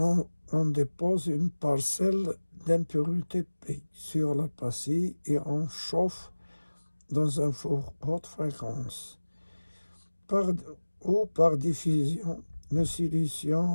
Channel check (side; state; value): both; inverted; correlation -1.00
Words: dépose une parcelle d'impurité P sur la pastille et on chauffe dans un four haute fréquence. Par diffusion, le